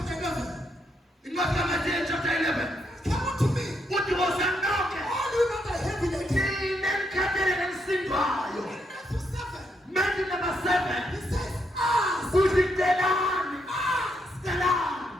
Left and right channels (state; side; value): normal; both; correlation 0.77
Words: 11. In Matthew chapter 11. Come on to me. What was that knock? All you know that heavy again. Matthew number 7. He says, ask. Who's it? That's